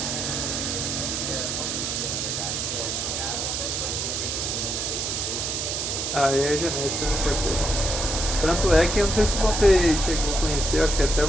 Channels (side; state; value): right; noise; hiss, 2 dB below the sound